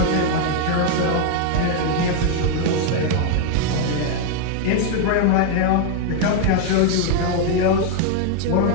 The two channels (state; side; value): different; both; correlation 0.00